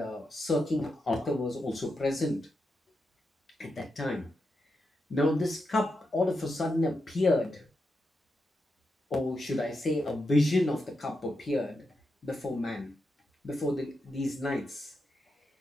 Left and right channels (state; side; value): normal; both; correlation 0.86